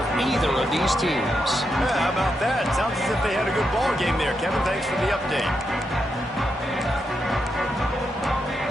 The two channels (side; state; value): both; normal; correlation 0.83